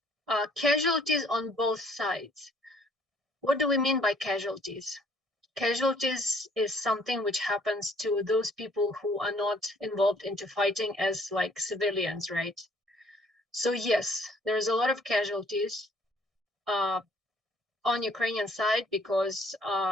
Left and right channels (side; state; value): both; normal; correlation 0.60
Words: Casualties on both sides. What do we mean by casualties? Casualties is something which happens to those people who are not involved into fighting as like civilians, right? So yes, there is a lot of casualties on Ukrainian side because